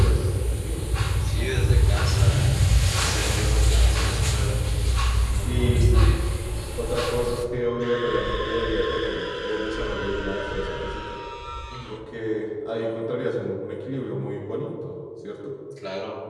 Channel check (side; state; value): both; identical; correlation 1.00